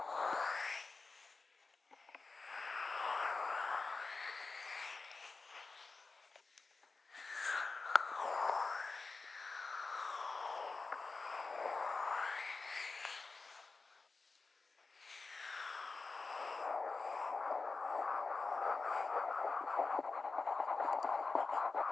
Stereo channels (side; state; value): right; quieter; 4.0 dB